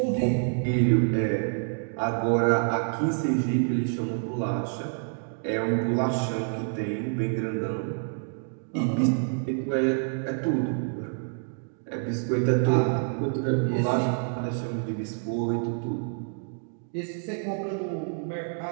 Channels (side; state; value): left; silent; 60 dB below the other